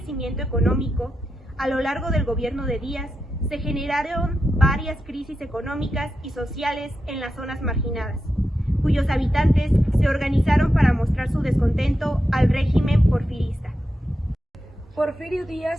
económico, a lo largo del gobierno de Díaz se generaron varias crisis económicas y sociales en las zonas marginadas, cuyos habitantes se organizaron para mostrar su descontento al régimen porfirista. Porfirio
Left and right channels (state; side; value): normal; both; correlation 0.88